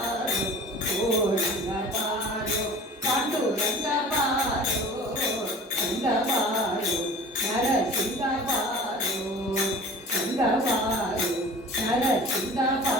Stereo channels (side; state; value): both; normal; correlation 0.41